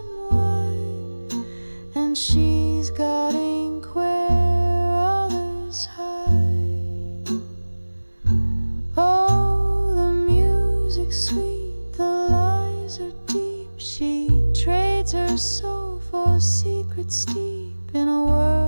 wide, and she's got ink where others hide. Oh, the music's sweet, the lies are deep. She trades her soul for secrets deep. In a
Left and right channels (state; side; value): inverted; both; correlation -1.00